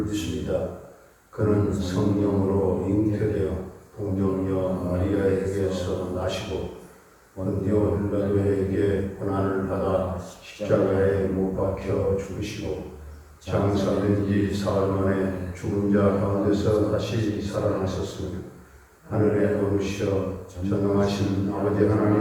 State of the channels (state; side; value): identical; both; correlation 1.00